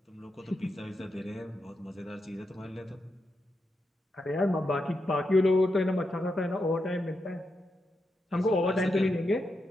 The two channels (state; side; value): normal; both; correlation 0.85